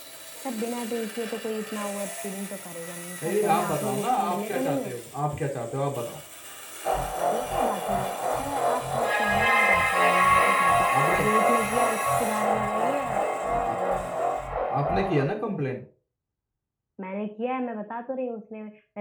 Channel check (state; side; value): identical; both; correlation 1.00